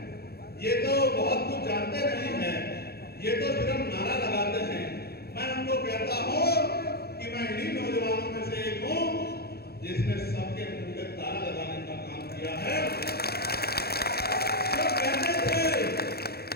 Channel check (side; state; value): right; late; 0.46 ms